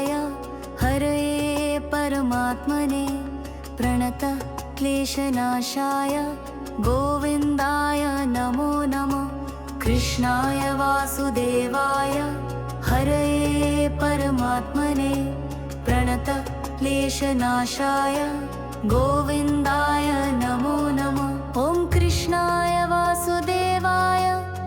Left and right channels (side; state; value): both; identical; correlation 1.00